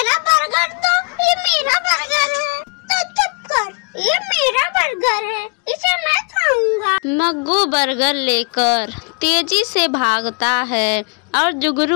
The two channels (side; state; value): right; quieter; 35.7 dB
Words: बर्गर, तो ये मेरा बर्गर है। तो चुप कर, ये मेरा बर्गर है, इसे मैं खाऊंगा। मग्गू बर्गर लेकर तेजी से भागता है और